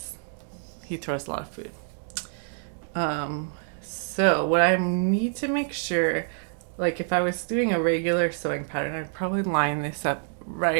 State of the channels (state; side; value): silent; left; digital silence